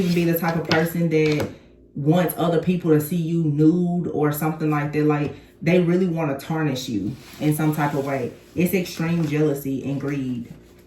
be the type of person that wants other people to see you nude or something like that. Like, they really want to tarnish you in some type of way. It's extreme jealousy and greed.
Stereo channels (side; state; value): both; identical; correlation 1.00